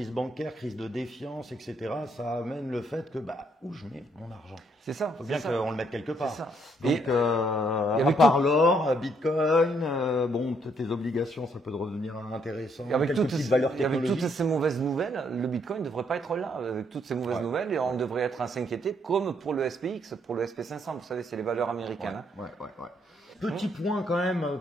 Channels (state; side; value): normal; both; correlation 0.71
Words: bancaire, crise de défiance, etc., ça amène le fait que, où je mets mon argent? C'est ça. Il faut bien qu'on le mette quelque part. C'est ça. Donc, à part l'or, Bitcoin, tes obligations, ça peut devenir intéressant. Avec toutes ces mauvaises nouvelles, le Bitcoin ne devrait pas être là. Avec toutes ces mauvaises nouvelles, et on devrait être à s'inquiéter, comme pour le SPX, pour le SP500. Vous savez, c'est les valeurs américaines. Petit point quand même,